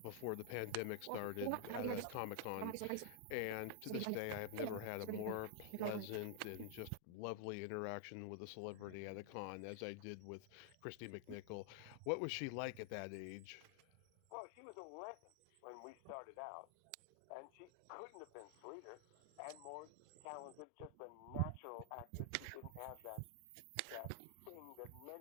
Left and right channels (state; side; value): different; both; correlation -0.01